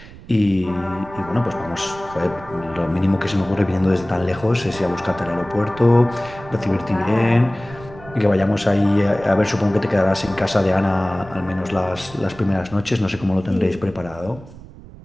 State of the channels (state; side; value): noise; right; rumble, 18 dB below the sound